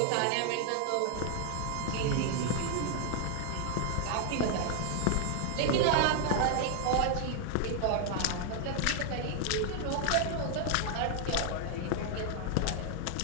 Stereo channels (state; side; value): different; both; correlation 0.00